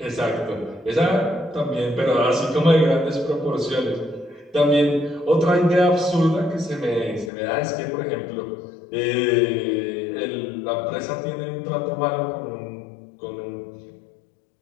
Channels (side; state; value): right; drops out; at 7.3 s